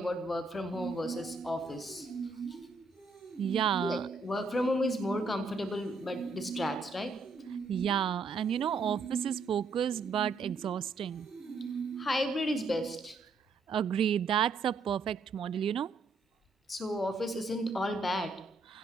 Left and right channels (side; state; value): left; quieter; 3.7 dB